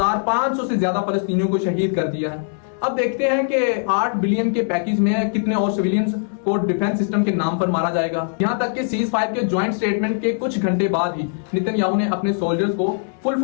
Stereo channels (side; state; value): right; silent; digital silence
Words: से ज्यादा फलस्तीनियों को शहीद कर दिया है। अब देखते हैं कि 8 बिलियन के पैकेज में कितने और सिविलियंस को डिफेंस सिस्टम के नाम पर मारा जाएगा। यहां तक कि सीज फायर के ज्वाइंट स्टेटमेंट के कुछ घंटे बाद ही नेतन्याहू ने अपने सोल्जर्स को फुल